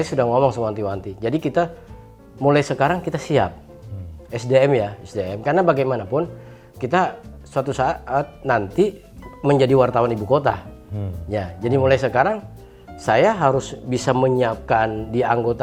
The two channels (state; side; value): identical; both; correlation 1.00